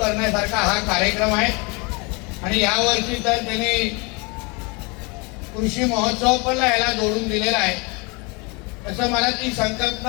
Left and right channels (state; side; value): quieter; right; 29.3 dB